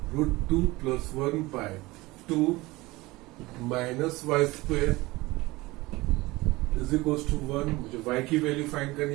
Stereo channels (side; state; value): left; quieter; 20.9 dB